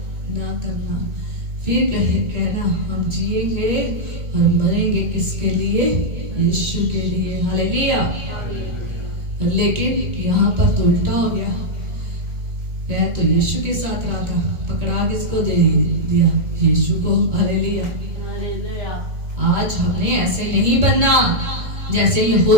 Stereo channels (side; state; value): left; late; 2.2 ms